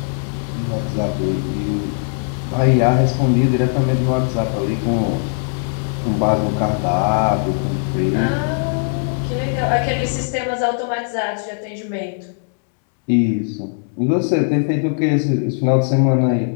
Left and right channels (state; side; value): silent; right; digital silence